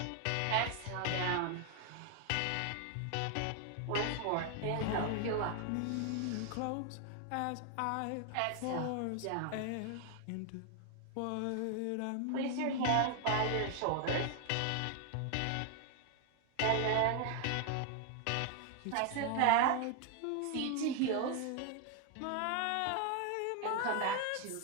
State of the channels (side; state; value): both; different; correlation 0.00